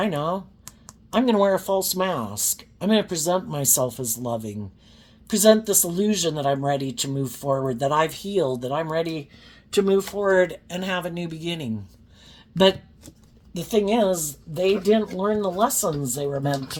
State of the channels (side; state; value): both; identical; correlation 1.00